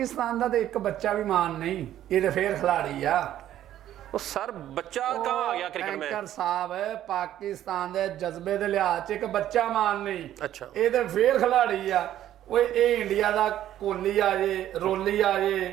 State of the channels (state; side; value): quieter; left; 12.1 dB